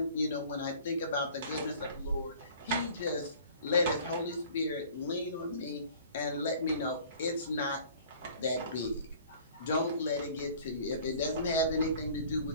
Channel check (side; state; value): both; inverted; correlation -0.49